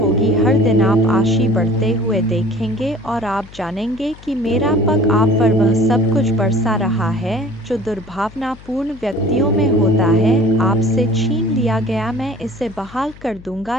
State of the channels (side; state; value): left; noise; hum, 20 dB below the sound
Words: हर दिन आप आशी बढ़ते हुए देखेंगे और आप जानेंगे कि मेरा पग आप पर वह सब कुछ बरसा रहा है जो दुर्भावनापूर्ण व्यक्तियों में होता है। आपसे छीन लिया गया मैं इसे बहाल कर दूंगा।